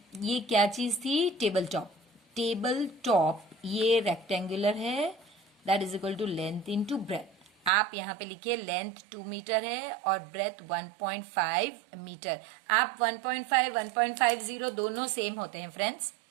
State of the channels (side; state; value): left; drops out; at 7.7 s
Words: ये क्या चीज थी? Table top. टेबल टॉप ये रेक्टेंगुलर है, that is equal to length into breadth. आप यहां पे लिखिए लेंथ 2 मीटर है और ब्रेथ 1.5 मीटर। आप 1.5 1.50 दोनों सेम होते हैं फ्रेंड्स।